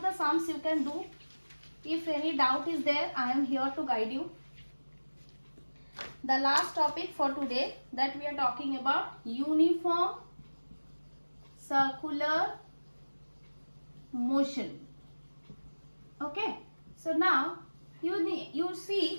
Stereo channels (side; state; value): both; inverted; correlation -1.00